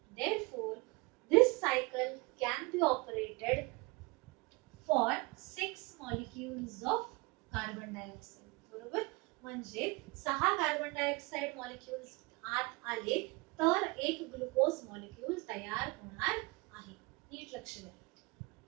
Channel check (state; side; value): quieter; left; 26.5 dB